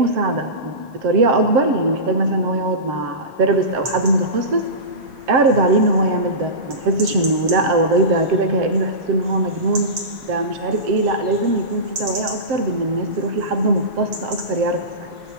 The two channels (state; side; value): late; left; 7.1 ms